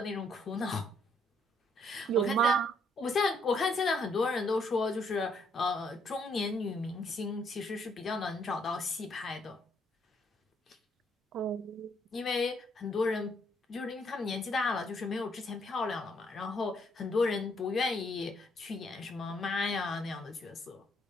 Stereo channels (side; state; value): both; normal; correlation 0.70